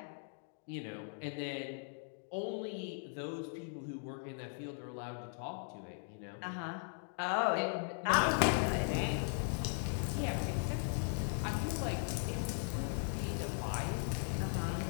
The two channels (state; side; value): silent; right; 52 dB below the other